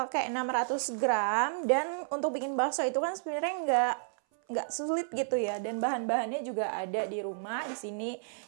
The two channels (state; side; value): silent; left; 57 dB below the other